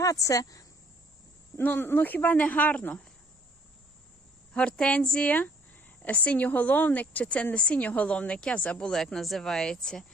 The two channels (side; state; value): both; normal; correlation 0.61